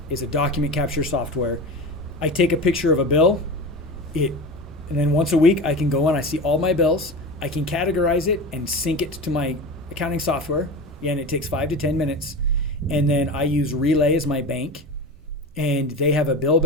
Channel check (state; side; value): normal; both; correlation 0.28